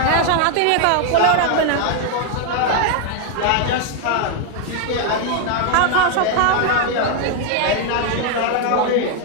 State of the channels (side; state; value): both; different; correlation 0.00